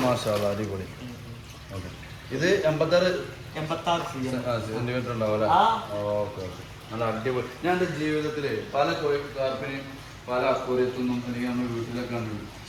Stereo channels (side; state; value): both; identical; correlation 1.00